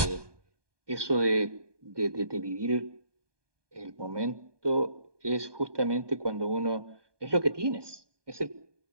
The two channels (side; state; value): left; late; 1.2 ms